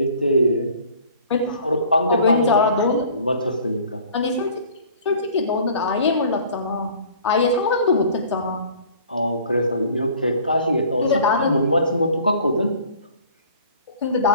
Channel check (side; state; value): both; inverted; correlation -0.49